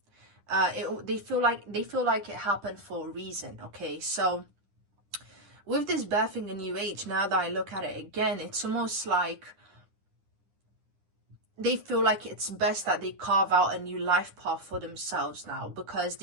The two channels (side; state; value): left; late; 9.9 ms